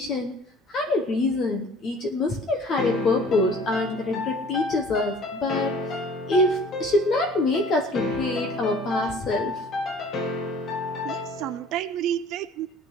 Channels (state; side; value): normal; both; correlation 0.49